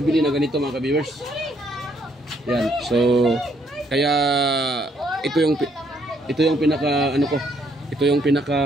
na ganito mga ka-viewers. Yan. So kaya ito yung pinaka ito yung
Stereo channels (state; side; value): normal; both; correlation 0.70